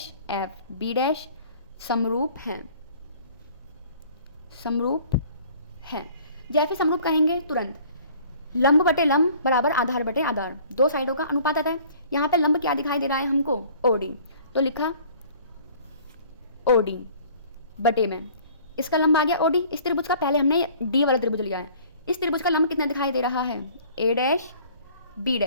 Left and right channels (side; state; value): both; inverted; correlation -0.51